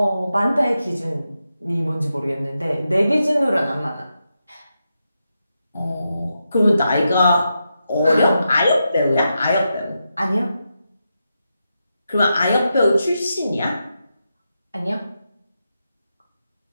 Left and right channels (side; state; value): both; inverted; correlation -0.87